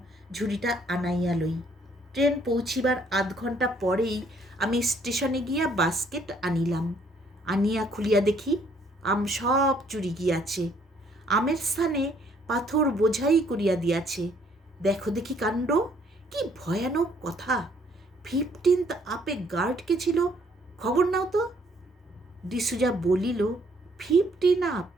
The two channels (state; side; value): normal; both; correlation 0.65